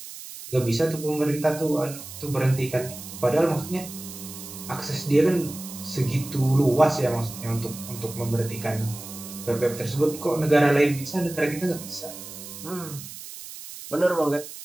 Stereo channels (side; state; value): right; noise; hiss, 13 dB below the sound